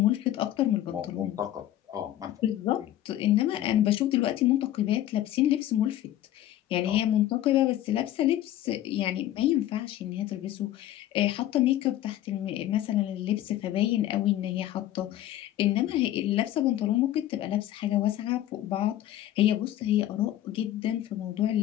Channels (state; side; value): quieter; right; 13.1 dB